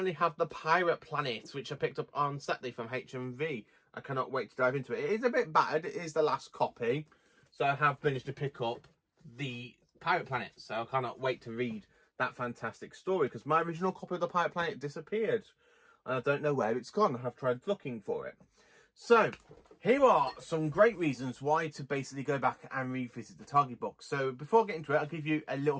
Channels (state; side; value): identical; both; correlation 1.00